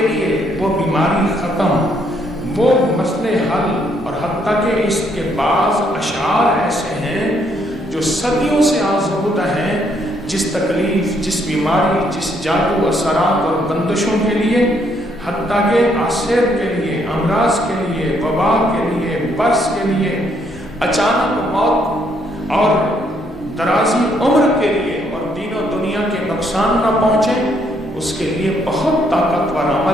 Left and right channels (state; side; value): normal; both; correlation 0.71